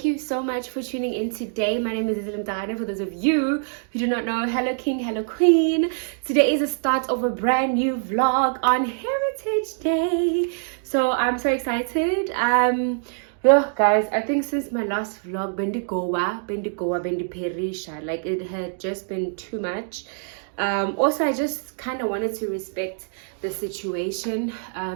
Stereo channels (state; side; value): silent; left; digital silence